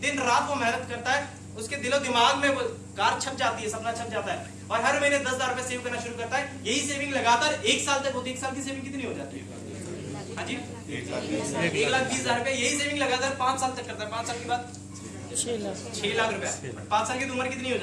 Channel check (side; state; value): both; identical; correlation 1.00